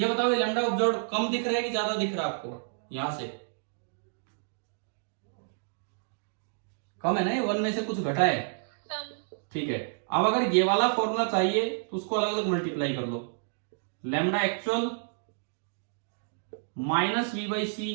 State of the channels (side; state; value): left; silent; digital silence